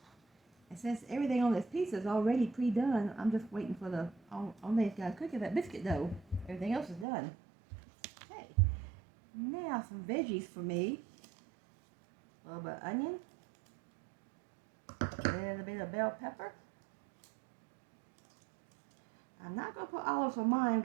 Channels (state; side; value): drops out; left; at 7.1 s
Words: And since everything on this pizza is already pre-done, I'm just waiting for the only thing that's got to cook is that biscuit dough. Everything else is done. Okay, now some veggies for me. A little bit of onion, a little bit of bell pepper. I'm not going to put olives on mine